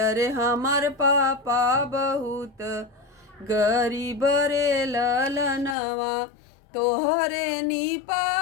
अरे हमार पापा बहुत गरीब रे ललनवा। तोहरे नी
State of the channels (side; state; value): right; drops out; at 5.8 s